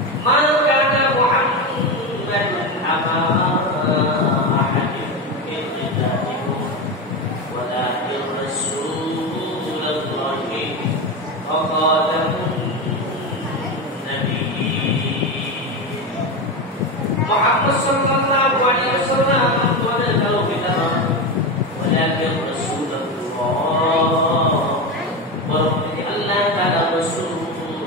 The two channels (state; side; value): normal; both; correlation 0.17